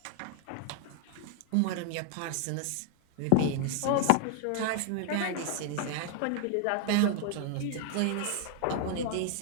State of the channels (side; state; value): both; different; correlation 0.00